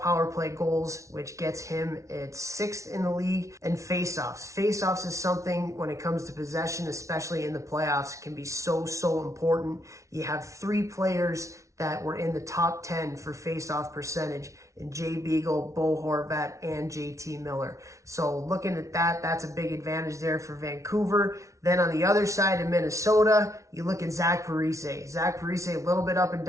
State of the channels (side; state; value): left; late; 0.15 ms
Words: power play goals, which gets him at 6th in the league. And faceoffs. Faceoffs is something when it comes to possession, especially in the playoffs, can be so important. You have 3 players that were in the top 10 for faceoff percentage in Jay Beagle, Bo Horvat, and JT Miller. So looking at that, that's a big advantage there for Vancouver. Then on the other side of Minnesota, you look at Zach Parise. Zach Parise, a little bit up and